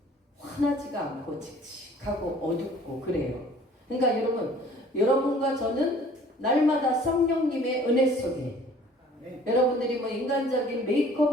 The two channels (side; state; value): both; normal; correlation 0.52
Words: 환하지가 않고 칙칙하고 어둡고 그래요. 그러니까 여러분과 저는 날마다 성령님의 은혜 속에 여러분들이 뭐 인간적인